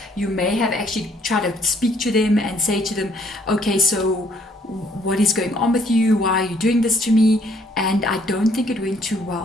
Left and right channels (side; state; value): both; normal; correlation 0.64